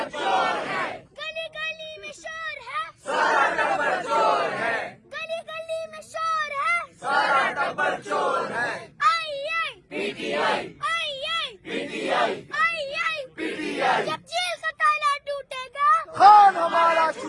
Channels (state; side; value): identical; both; correlation 1.00